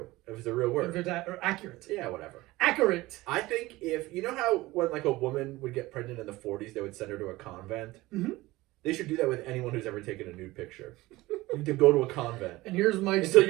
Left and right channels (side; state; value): left; quieter; 19.2 dB